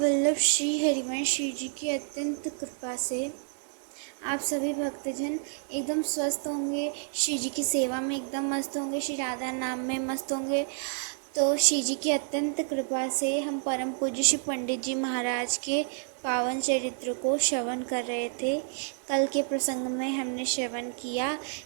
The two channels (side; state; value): left; silent; 58 dB below the other